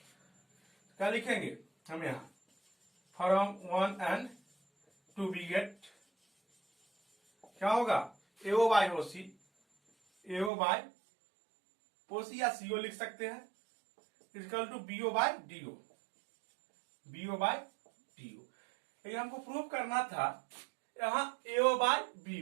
क्या लिखेंगे हम यहां, फ्रॉम 1 and 2 वी गेट क्या होगा, एओ बाय ओसी, एओ बाय ओसी या सीओ लिख सकते हैं, equal to BO by DO, BO by DO. लेकिन हमको प्रूव करना था यहाँ एओ बाय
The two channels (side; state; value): left; drops out; at 10.5 s